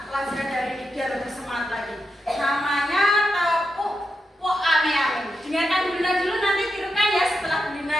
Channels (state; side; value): normal; both; correlation 0.86